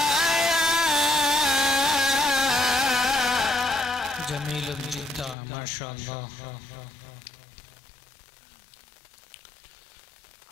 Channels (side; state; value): right; drops out; at 5.4 s